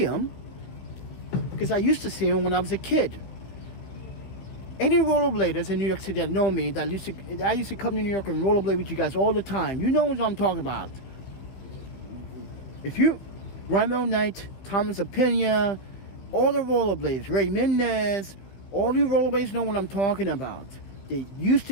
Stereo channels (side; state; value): right; late; 16 ms